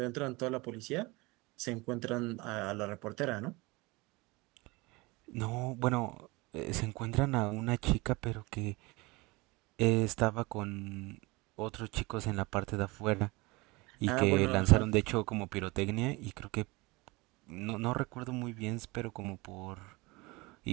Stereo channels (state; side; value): quieter; left; 24.0 dB